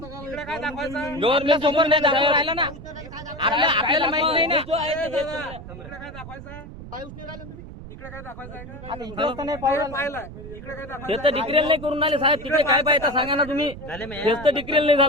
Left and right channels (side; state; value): right; noise; rumble, 13 dB below the sound